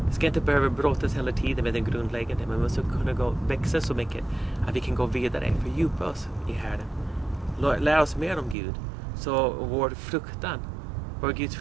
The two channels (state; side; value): drops out; left; at 8.6 s